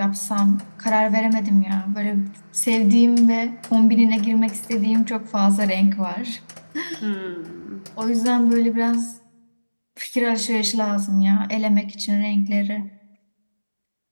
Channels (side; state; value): both; inverted; correlation -1.00